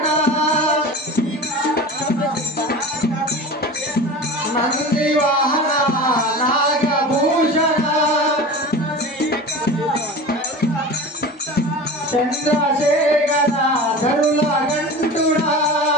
నంది వాహన నాగభూషణ. చంద్రశేఖర ధరుల గంటుడా.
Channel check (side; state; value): both; normal; correlation 0.33